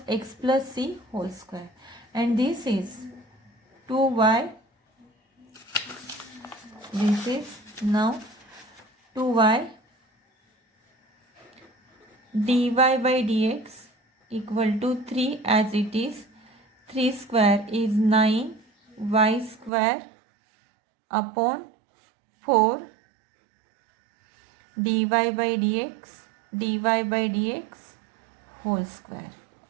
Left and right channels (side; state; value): left; drops out; at 19.7 s